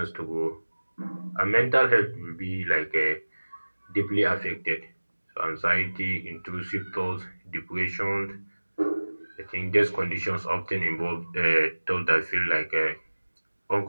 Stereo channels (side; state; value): both; inverted; correlation -1.00